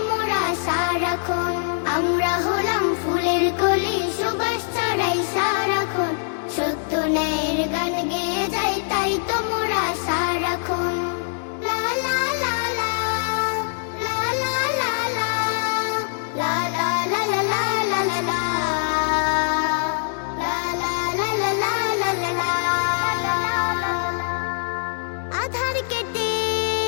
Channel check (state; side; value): silent; right; digital silence